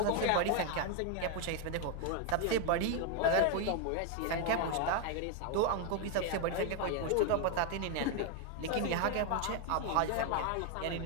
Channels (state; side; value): different; both; correlation 0.01